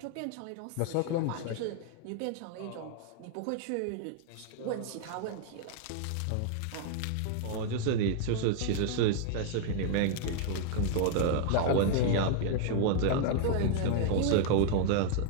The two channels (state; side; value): different; both; correlation 0.00